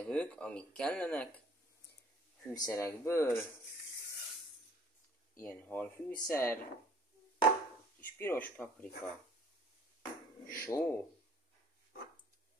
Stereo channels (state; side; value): normal; both; correlation 0.55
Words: amik kellenek, fűszerekből, ilyen halfűszer, kis piros paprika, só,